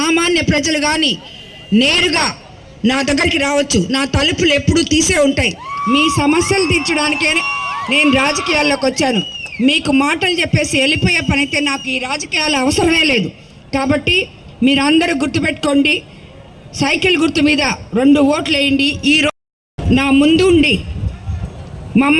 ప్రజలు కానీ నేరుగా నా దగ్గరికి రావచ్చు. నా తలుపులు ఎప్పుడూ తీసే ఉంటాయి. మీ సమస్యలు తీర్చడానికే నేను రాజకీయాల్లోకి వచ్చాను. మీకు మాటలు చెప్పేసి వెళ్ళిపోయే పని అయితే నాకు ఈ రాజకీయాలు అవసరమే లేదు. కాబట్టి మీరందరూ గుర్తుపెట్టుకోండి, సైకిల్ గుర్తు మీద 2 ఓట్లు వేయండి. ఈరోజు నా ముందు ఉండి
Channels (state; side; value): identical; both; correlation 1.00